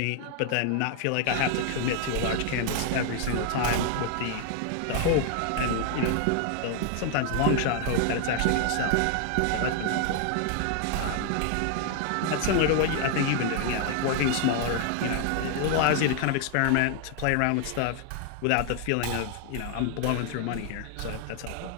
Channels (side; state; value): both; different; correlation 0.00